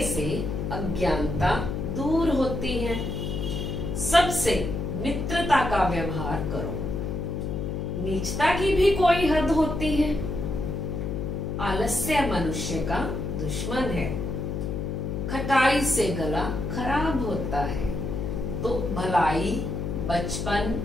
से अज्ञानता दूर होती है, सबसे मित्रता का व्यवहार करो, नीचता की भी कोई हद होती है, आलस्य मनुष्य का दुश्मन है, खटाई से गला खराब होता है। तो भलाई, बचपन,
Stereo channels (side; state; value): left; noise; hum, 3 dB below the sound